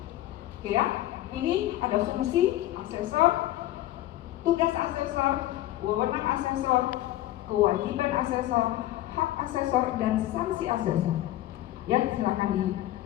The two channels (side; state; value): right; quieter; 15.0 dB